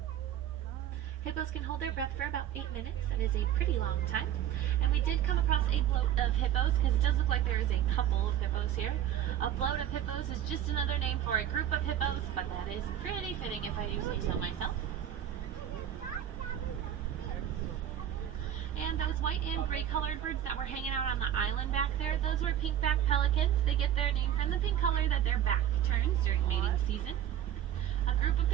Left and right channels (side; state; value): left; quieter; 10.6 dB